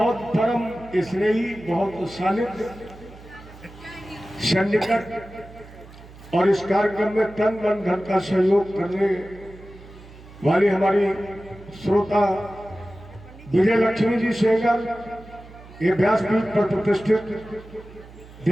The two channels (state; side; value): noise; right; hum, 19 dB below the sound